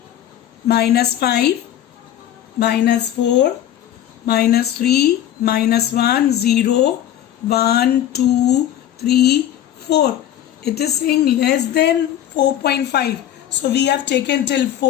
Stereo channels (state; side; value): quieter; right; 11.5 dB